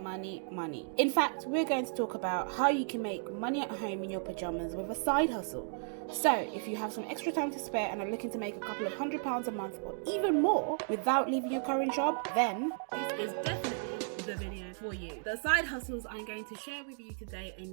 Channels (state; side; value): silent; left; 55 dB below the other